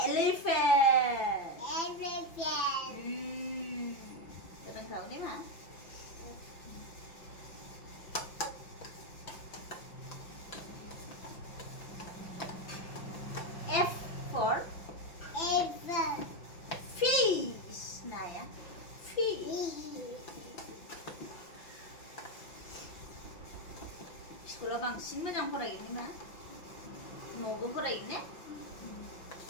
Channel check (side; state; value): right; late; 5.8 ms